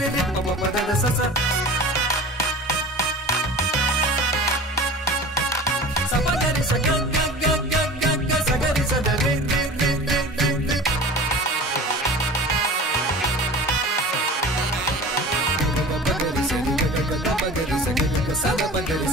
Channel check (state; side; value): normal; both; correlation 0.38